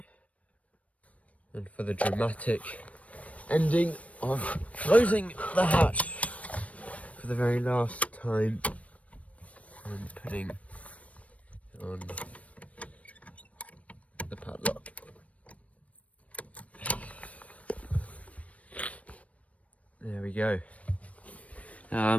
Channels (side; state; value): right; late; 0.066 ms